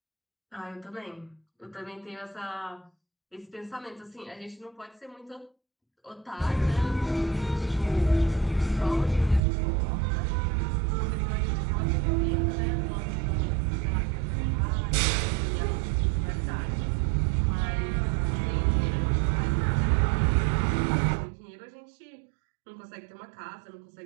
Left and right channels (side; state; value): left; drops out; at 9.4 s